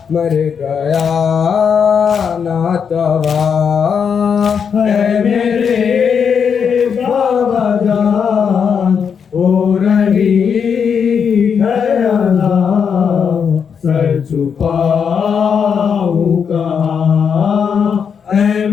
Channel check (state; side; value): quieter; right; 6.9 dB